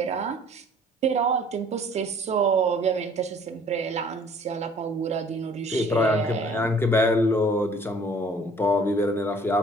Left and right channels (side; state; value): both; normal; correlation 0.54